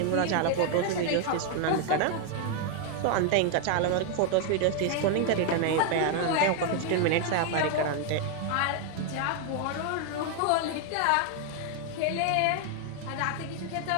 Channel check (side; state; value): both; different; correlation 0.01